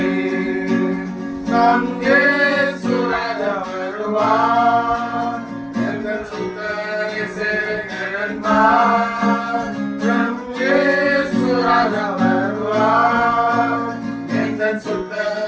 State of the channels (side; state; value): both; identical; correlation 1.00